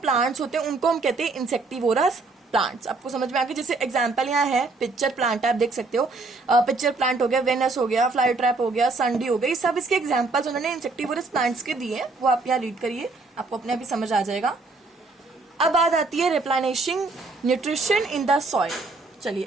plants होते हैं उनको हम कहते हैं insectivorous प्लांट्स. आपको समझ में आ गया. जैसे एग्जाम्पल यहाँ है पिक्चर प्लांट, आप देख सकते हो. पिक्चर प्लांट हो गया, वेनस हो गया, फ्लाई ट्रैप हो गया, संडी हो गई, सब इसके एग्जाम्पल्स उन्होंने इंसेक्टिवोरस प्लांट्स के दिए. वो आप यहाँ रीड करिए, आपको अपने आप ही समझ आ जाएगा. अब बात आती है replenishing nutrition in the soil. चलिए,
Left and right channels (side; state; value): left; quieter; 3.6 dB